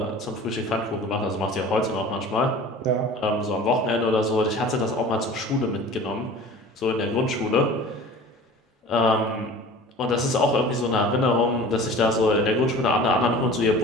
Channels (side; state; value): both; normal; correlation 0.41